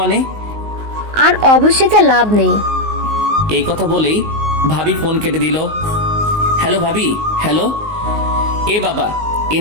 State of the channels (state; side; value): late; left; 19 ms